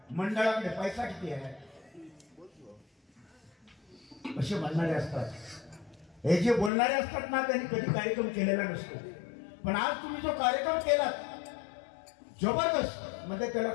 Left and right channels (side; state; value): right; drops out; at 6.7 s